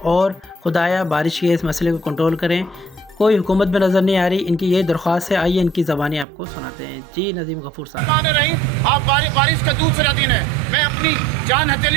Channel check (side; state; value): left; drops out; at 6.2 s